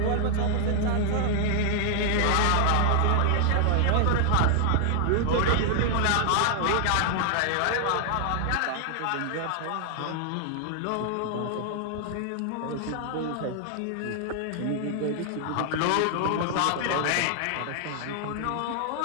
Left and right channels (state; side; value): different; both; correlation 0.00